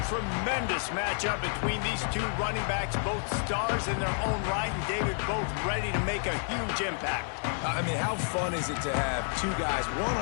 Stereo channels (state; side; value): silent; right; 58 dB below the other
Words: tremendous matchup between these two running backs, both stars in their own right, and David, both ready to make a huge impact. I mean, how fun is it to have two guys, one